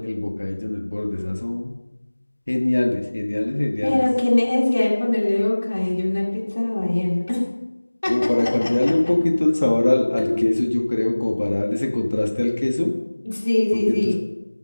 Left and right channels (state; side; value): inverted; both; correlation -1.00